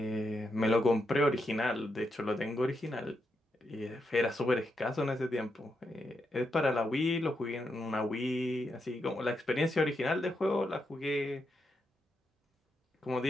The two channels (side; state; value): both; normal; correlation 0.83